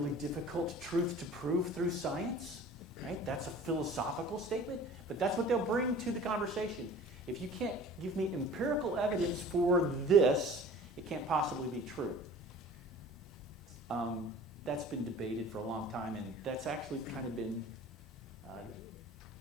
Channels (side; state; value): both; normal; correlation 0.44